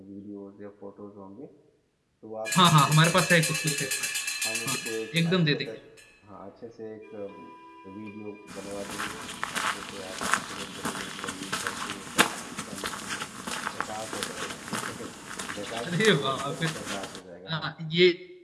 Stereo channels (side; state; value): both; identical; correlation 1.00